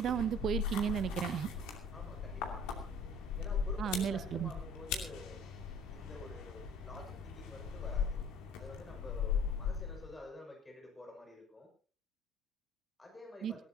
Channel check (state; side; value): normal; both; correlation 0.50